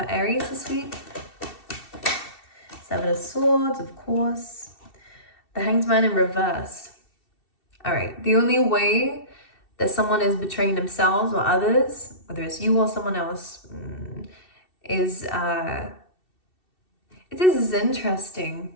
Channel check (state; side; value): late; right; 2.7 ms